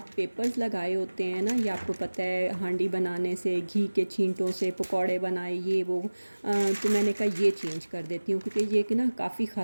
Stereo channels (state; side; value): inverted; both; correlation -1.00